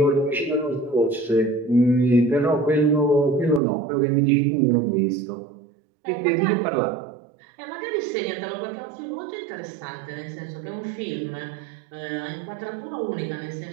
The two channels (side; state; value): left; drops out; at 3.6 s